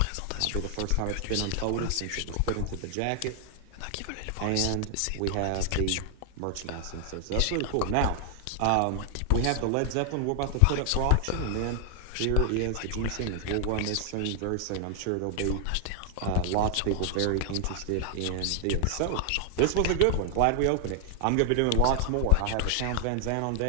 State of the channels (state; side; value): different; both; correlation 0.00